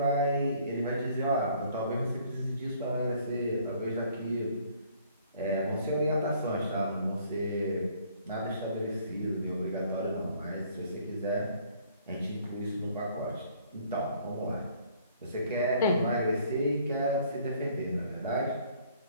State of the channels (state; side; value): inverted; both; correlation -0.59